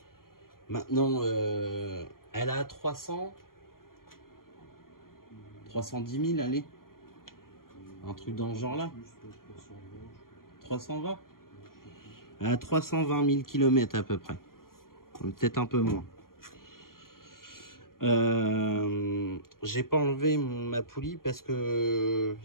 Maintenant, elle a 310 000, allez. Un truc dans ce genre-là. 320. Elle a 320 000 km à peu près. Peut-être un peu moins. J'ai pas enlevé ma poulie parce que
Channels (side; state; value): right; late; 0.92 ms